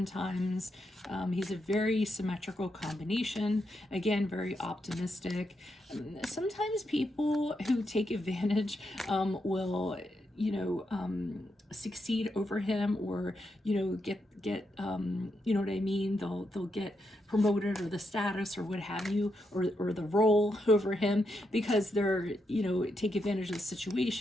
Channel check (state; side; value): normal; both; correlation 0.82